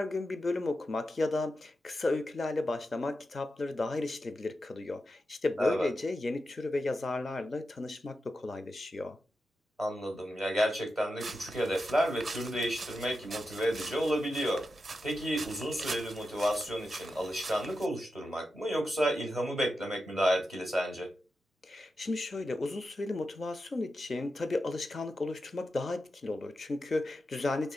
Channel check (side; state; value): both; normal; correlation 0.89